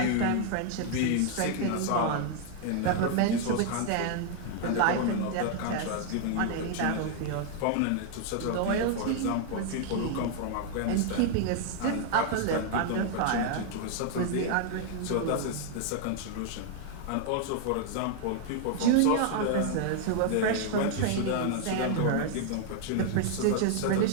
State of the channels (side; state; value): both; different; correlation 0.00